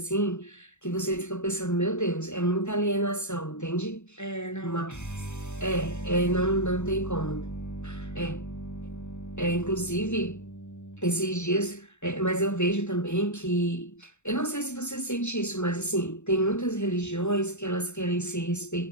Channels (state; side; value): late; right; 0.83 ms